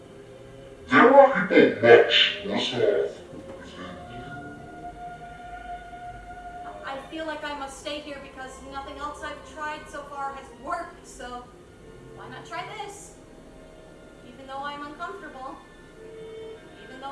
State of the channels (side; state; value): both; identical; correlation 1.00